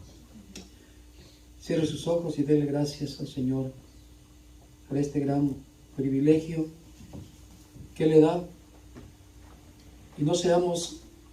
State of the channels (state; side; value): identical; both; correlation 1.00